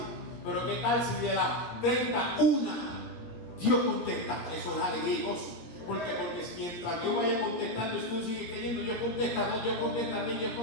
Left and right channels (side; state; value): right; late; 17 ms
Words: Pero qué tal si de las 30, una Dios contesta. Eso es alegría y gozo. Porque mientras Dios vaya contestando, tú sigues creyendo, Dios contesta 2, Dios contesta 3, Dios